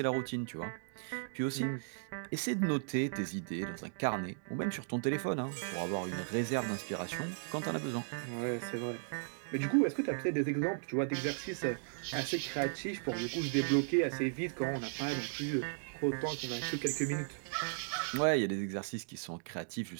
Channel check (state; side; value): silent; left; digital silence